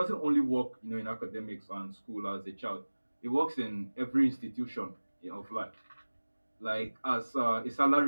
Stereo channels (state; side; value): inverted; both; correlation -1.00